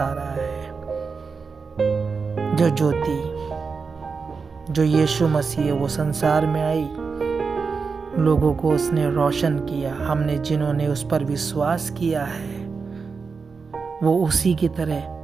रहा है। जो ज्योति, जो यीशु मसीह है, वो संसार में आई, लोगों को उसने रोशन किया। हमने जिन्होंने उस पर विश्वास किया है वो उसी की तरह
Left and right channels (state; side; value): quieter; left; 5.0 dB